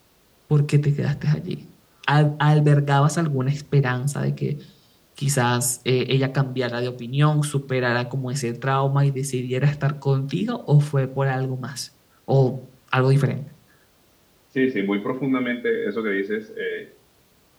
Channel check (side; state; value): both; identical; correlation 1.00